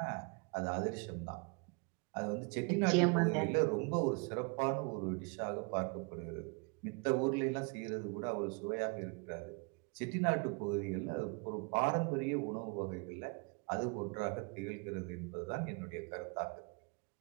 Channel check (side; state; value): left; quieter; 32.7 dB